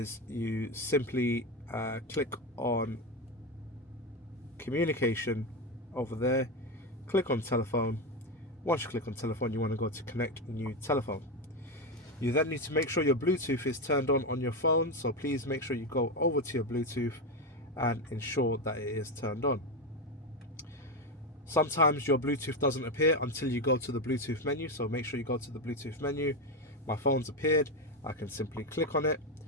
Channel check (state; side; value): normal; both; correlation 0.12